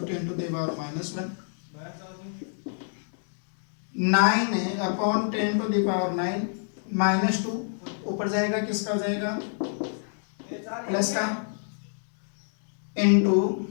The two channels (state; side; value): silent; right; digital silence